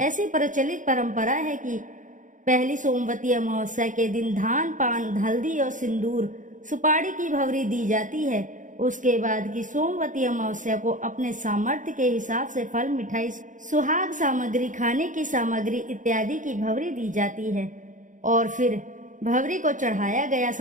प्रचलित परंपरा है कि पहली सोमवती अमावस्या के दिन धान, पान, हल्दी और सिंदूर, सुपारी की भंवरी दी जाती है। उसके बाद की सोमवती अमावस्या को अपने सामर्थ्य के हिसाब से फल, मिठाई, सुहाग सामग्री, खाने की सामग्री इत्यादि की भंवरी दी जाती है और फिर भंवरी को चढ़ाया गया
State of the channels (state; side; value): late; left; 0.37 ms